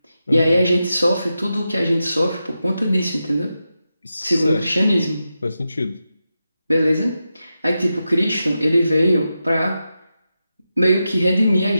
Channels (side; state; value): both; inverted; correlation -0.89